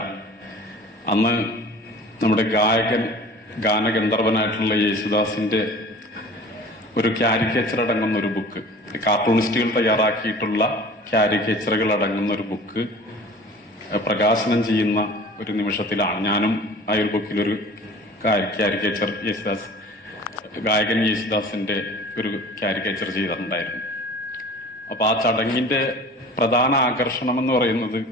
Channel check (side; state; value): both; normal; correlation 0.43